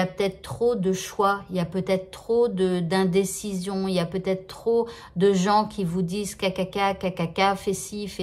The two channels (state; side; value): identical; both; correlation 1.00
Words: peut-être trop de choix. Il y a peut-être trop d'indécision. Il y a peut-être trop de gens qui vous disent cacaca, cacaca, fais ci,